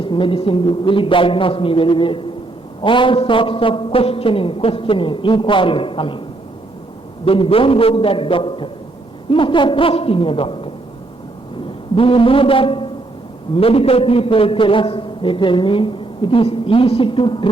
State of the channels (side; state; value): left; quieter; 3.0 dB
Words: medicine, will he diagnose me very well? All sorts of questioning, inquiring coming. Then don't go to that doctor. You must have trust in your doctor. Do you know that medical people tell us, they tell me, it is easy to